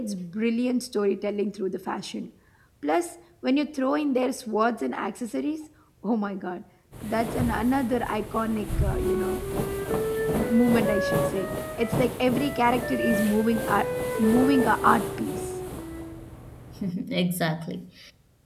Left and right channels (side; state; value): both; identical; correlation 1.00